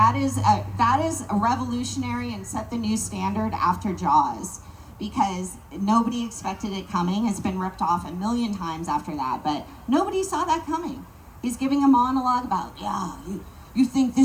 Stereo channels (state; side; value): identical; both; correlation 1.00